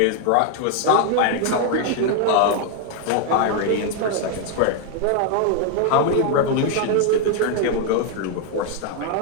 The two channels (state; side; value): different; both; correlation 0.01